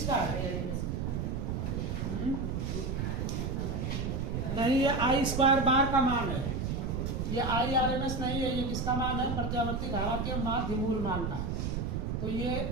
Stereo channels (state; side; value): noise; right; rumble, 1 dB below the sound